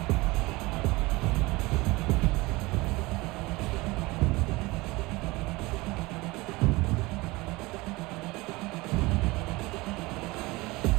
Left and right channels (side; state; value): left; quieter; 22.2 dB